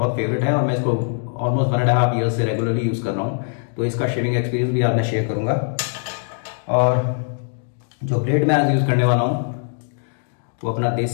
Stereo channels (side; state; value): right; silent; digital silence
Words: फेवरेट है और मैं इसको ऑलमोस्ट 1.5 ईयर से रेगुलरली यूज कर रहा हूँ। तो इसका शेविंग एक्सपीरियंस भी आज मैं शेयर करूंगा। और जो ब्लेड मैं आज यूज करने वाला हूँ वो अपना